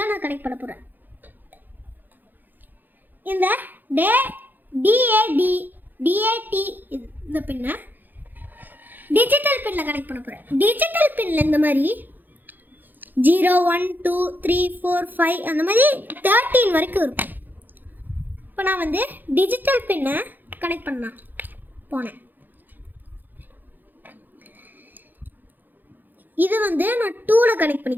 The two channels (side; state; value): left; late; 0.087 ms